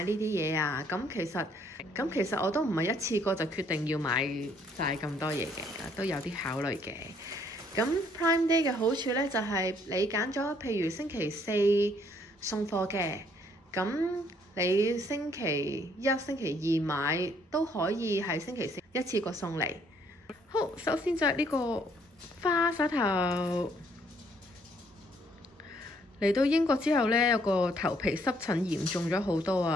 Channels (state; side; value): normal; both; correlation 0.66